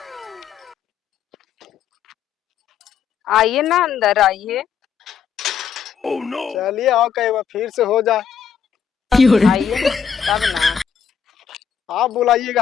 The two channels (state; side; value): quieter; right; 7.3 dB